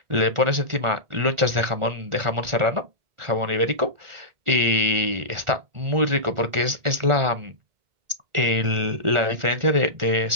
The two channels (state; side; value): late; left; 1.4 ms